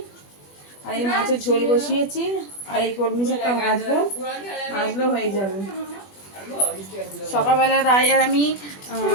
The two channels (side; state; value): right; late; 21 ms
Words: আর এই মাছের ঝোল বসিয়েছি, আর এই কলমি শাকটা ভাজবো, ভাজলেও হয়ে যাবে। সকালবেলা রায় আর আমি